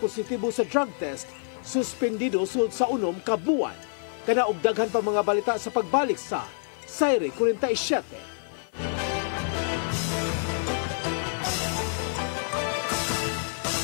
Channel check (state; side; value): silent; right; 60 dB below the other